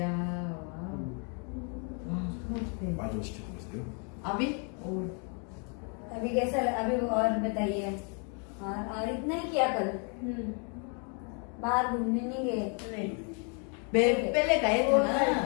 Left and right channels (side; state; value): right; quieter; 39.0 dB